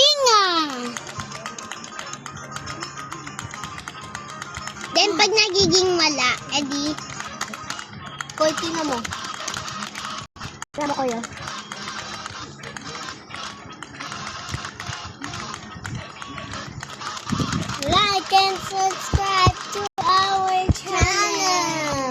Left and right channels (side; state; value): both; identical; correlation 1.00